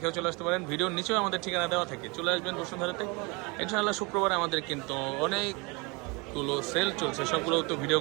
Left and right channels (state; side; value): quieter; left; 28.2 dB